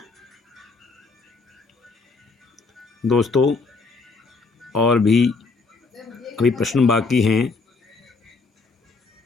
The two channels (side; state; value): right; quieter; 4.1 dB